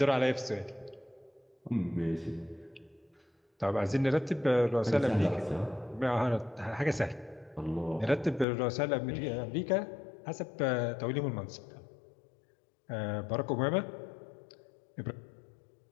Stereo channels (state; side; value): drops out; right; at 8.5 s